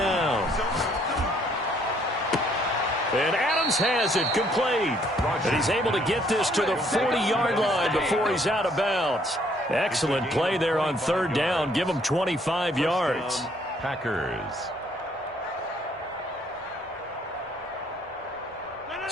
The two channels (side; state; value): both; normal; correlation 0.65